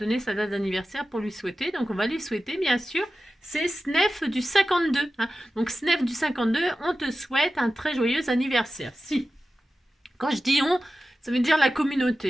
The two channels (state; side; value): normal; both; correlation 0.94